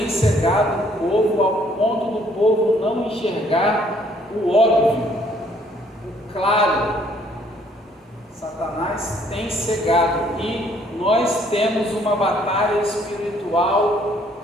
cegado o povo ao ponto do povo não enxergar o óbvio, o claro. Satanás tem cegado, e nós temos uma batalha espiritual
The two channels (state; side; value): normal; both; correlation 0.64